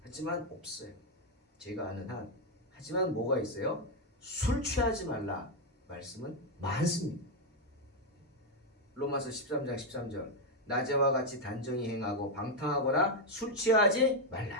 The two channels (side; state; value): both; normal; correlation 0.02